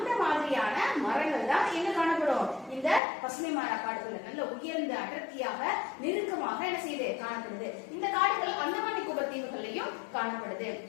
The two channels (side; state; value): right; drops out; at 3.0 s